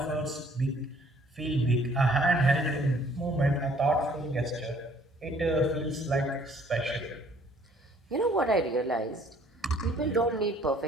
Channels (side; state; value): both; normal; correlation 0.59